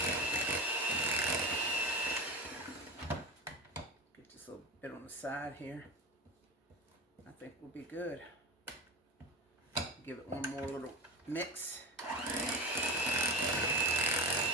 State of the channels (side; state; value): both; normal; correlation 0.25